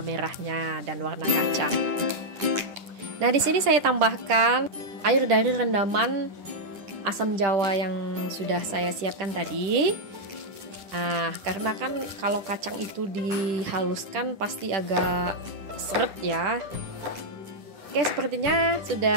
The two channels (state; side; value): late; left; 10 ms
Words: dan warna kacang. Nah di sini saya tambahkan air dari rendaman asam jawa yang sudah saya siapkan tadi. Nah, karena kan kalau kacang itu dihaluskan pasti agak seret ya. Oke, sepertinya